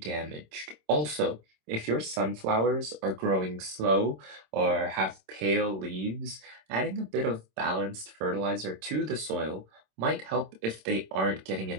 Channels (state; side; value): late; left; 26 ms